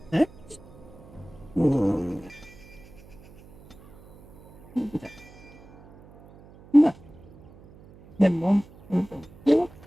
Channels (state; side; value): noise; right; hum, 23 dB below the sound